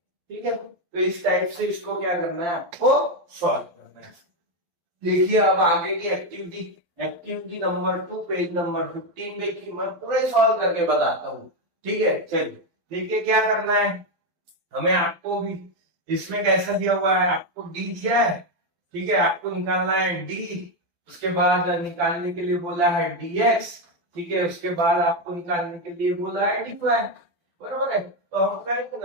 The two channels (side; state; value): left; late; 12 ms